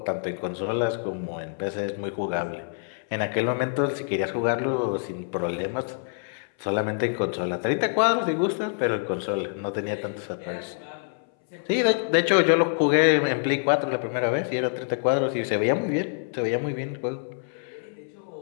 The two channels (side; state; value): right; silent; 61 dB below the other